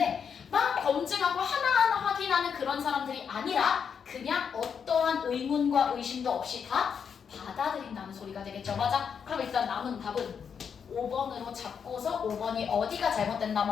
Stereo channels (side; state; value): right; quieter; 6.9 dB